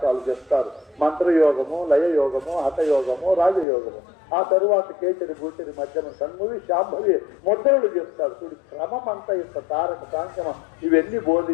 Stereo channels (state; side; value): drops out; right; at 3.7 s